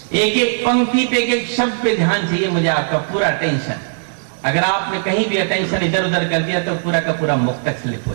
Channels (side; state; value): left; silent; digital silence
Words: एक एक पंक्ति पे, एक एक शब्द पे ध्यान चाहिए मुझे, आपका पूरा अटेंशन। अगर आपने कहीं भी अटेंशन इधर उधर कर दिया तो पूरा का पूरा मुक्तक स्लिप हो